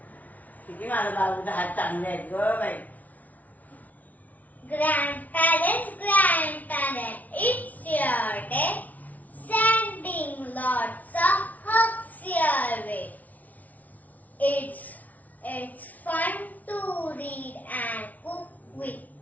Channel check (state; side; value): late; right; 0.075 ms